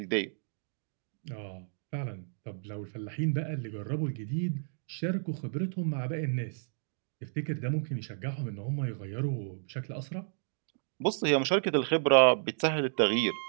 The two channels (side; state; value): left; silent; digital silence